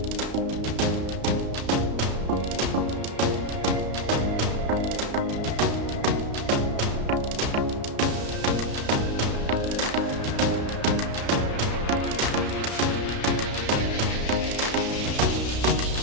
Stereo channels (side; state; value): left; late; 33 ms